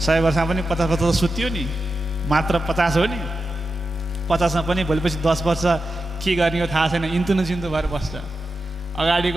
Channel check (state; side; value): normal; both; correlation 0.90